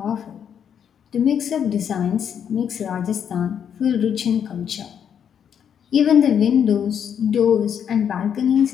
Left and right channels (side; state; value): right; quieter; 8.3 dB